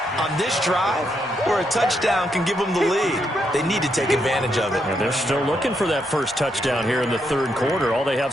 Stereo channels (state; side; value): normal; both; correlation 0.79